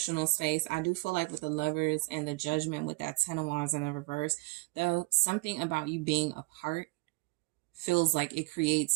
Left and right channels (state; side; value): quieter; left; 24.9 dB